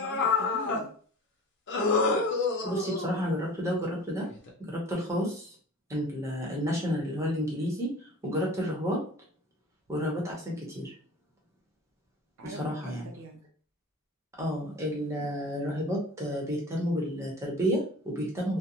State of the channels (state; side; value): normal; both; correlation 0.41